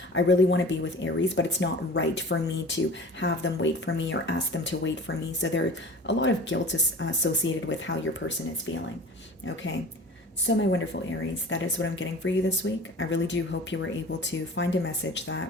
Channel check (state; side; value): normal; both; correlation 0.39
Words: I really want to be with Aries, but it's not right for me to have them wait for me or ask them to wait for me. So there's a lot of guilt associated with how your person is feeling. Okay. So my wonderful Aries, that is what I'm getting for you this week. I really do hope you were able to find a message